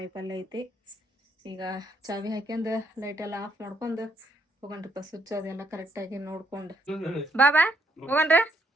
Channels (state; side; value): normal; both; correlation 0.73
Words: ಐತಿ. ಈಗ ಚಾವಿ ಹಾಕ್ಯಂದು ಲೈಟ್ ಎಲ್ಲ ಆಫ್ ಮಾಡ್ಕೊಂಡು ಹೋಗಣ್ರಿಪ್ಪ. ಸ್ವಿಚ್ ಅದೆಲ್ಲ ಕರೆಕ್ಟಾಗಿ ನೋಡ್ಕೊಂಡು ಬಾಬಾ ಹೋಗಣ್ರಿ.